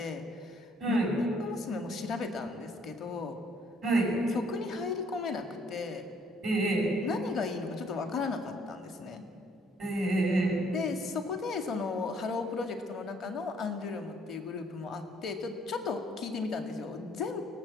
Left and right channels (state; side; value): normal; both; correlation 0.64